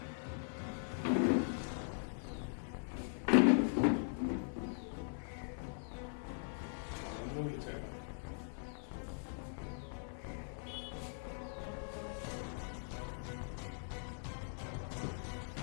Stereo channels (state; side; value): silent; right; 50 dB below the other